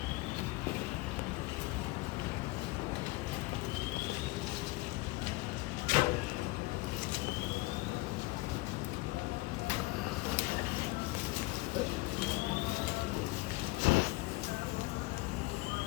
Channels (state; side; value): quieter; right; 22.2 dB